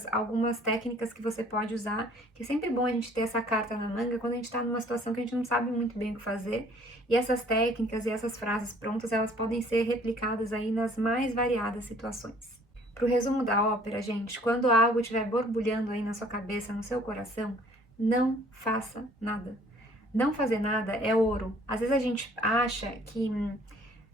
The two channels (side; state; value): both; normal; correlation 0.57